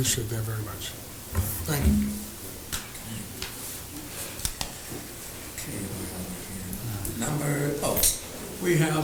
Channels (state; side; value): identical; both; correlation 1.00